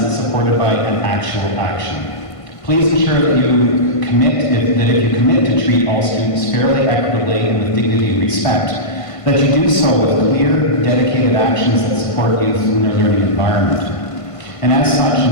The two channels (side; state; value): right; late; 1.5 ms